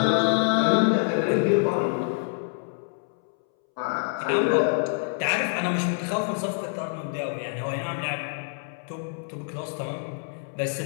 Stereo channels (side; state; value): right; silent; 61 dB below the other